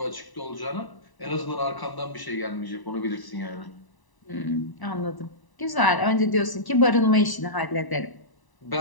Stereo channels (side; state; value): right; late; 1.0 ms